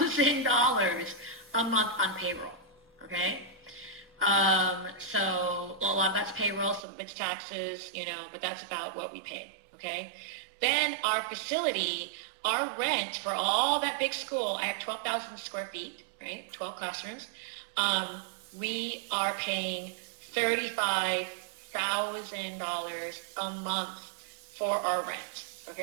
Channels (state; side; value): drops out; left; at 6.9 s